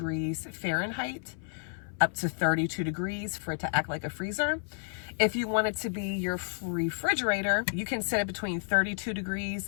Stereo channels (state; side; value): silent; right; 57 dB below the other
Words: Fahrenheit, up to 32 degrees for it to act like a freezer. If you want it to be your refrigerator, you can set it between 32